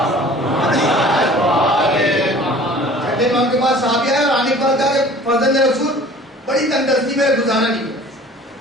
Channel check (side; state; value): both; normal; correlation 0.47